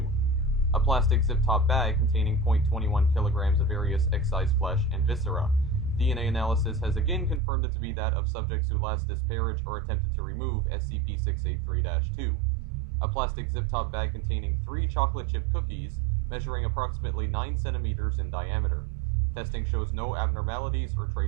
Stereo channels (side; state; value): left; drops out; at 7.4 s